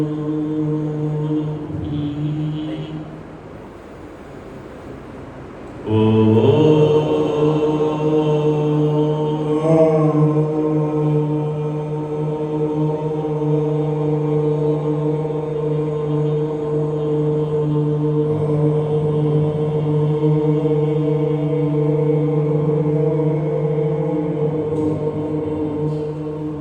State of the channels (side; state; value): both; identical; correlation 1.00